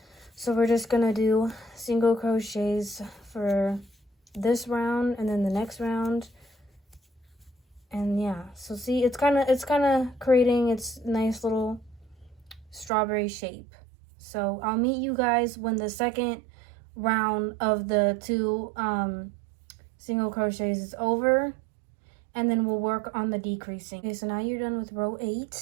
So we're just gonna do single crochets for this round and then the next round. And yeah, so see, it's kind of creating its nice little strawberry shape. So I'll meet you guys when the second round of the 2 single crochets is over, and then we'll work on the decreasing. Okay, so now you're done with row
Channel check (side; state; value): left; drops out; at 12.9 s